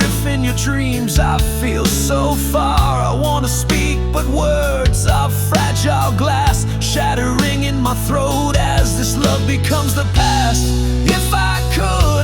in your dreams I feel so far. I wanna speak, but words are fragile glass, shattering in my throat as this love becomes the past. If I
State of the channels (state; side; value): identical; both; correlation 1.00